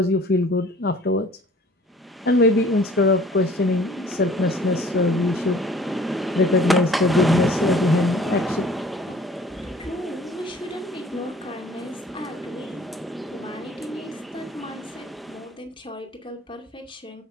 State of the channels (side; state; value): both; normal; correlation 0.52